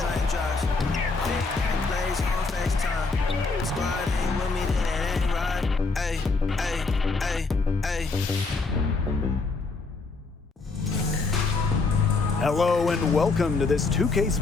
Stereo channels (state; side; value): quieter; right; 4.0 dB